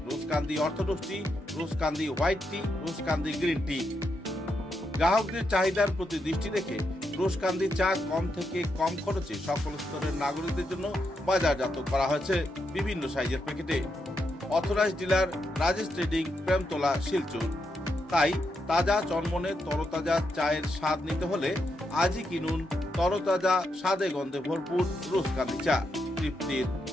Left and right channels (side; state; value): both; normal; correlation 0.82